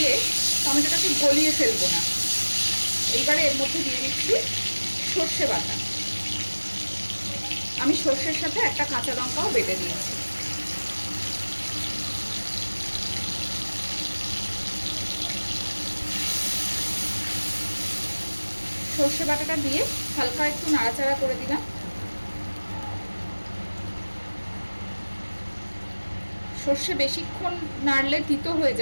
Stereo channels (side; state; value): both; inverted; correlation -1.00